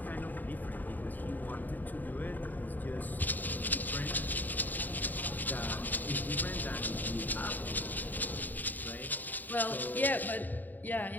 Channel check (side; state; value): right; late; 0.087 ms